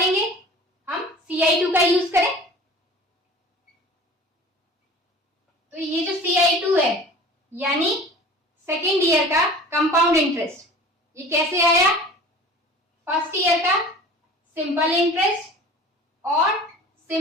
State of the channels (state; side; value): normal; both; correlation 0.41